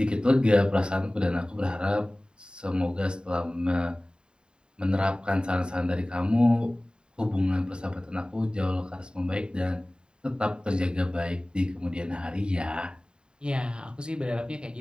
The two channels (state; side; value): late; left; 0.049 ms